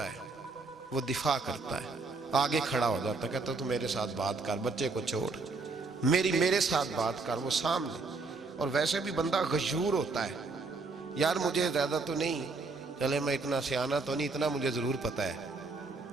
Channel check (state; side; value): quieter; left; 3.9 dB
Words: ہے، وہ دفاع کرتا ہے، آگے کھڑا ہو جاتا ہے، کہتا تو میرے ساتھ بات کر، بچے کو چھوڑ، میرے ساتھ بات کر، وہ سامنے۔ اور ویسے بھی بندہ غیور ہوتا ہے، یار مجھے زیادہ تو نہیں، چلے میں اتنا سیانہ تو نہیں، اتنا مجھے ضرور پتہ ہے